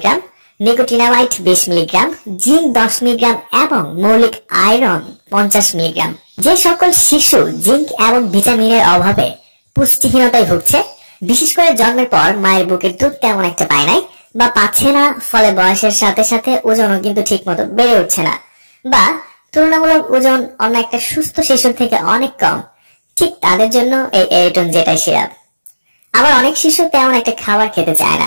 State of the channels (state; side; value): inverted; both; correlation -1.00